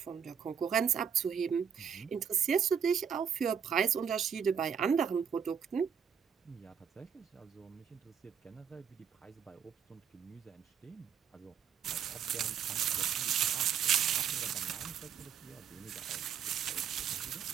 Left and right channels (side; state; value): left; quieter; 7.7 dB